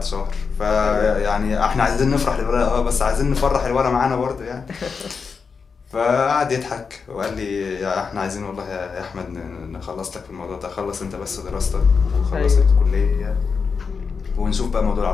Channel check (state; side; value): quieter; right; 5.4 dB